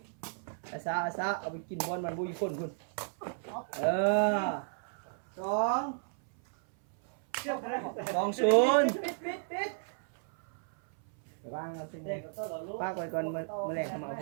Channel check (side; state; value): left; silent; 56 dB below the other